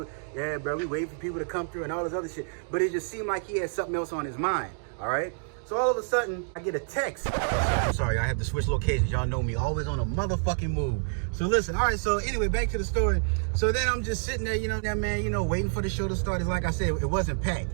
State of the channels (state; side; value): silent; left; 59 dB below the other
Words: waiting for people to come through and all this other shit. But it just seemed like he had something else on his mind. All right. So all of a sudden, I get a text. I'm sorry, I have to switch locations. Y'all know me, always on a motherfucking move. So listen, all right, so anyway, back to the story. So then I'm just sitting there, waiting for the show to start. It's like I said, it wasn't packed.